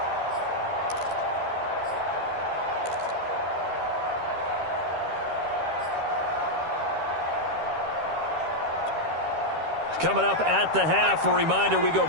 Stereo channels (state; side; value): late; left; 13 ms